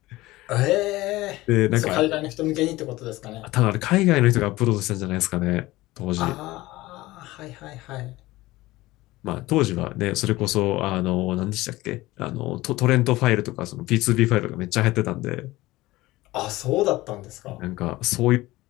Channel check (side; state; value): right; quieter; 18.6 dB